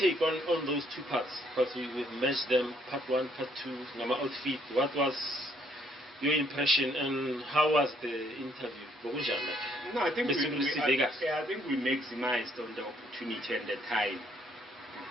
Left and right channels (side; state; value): both; normal; correlation 0.67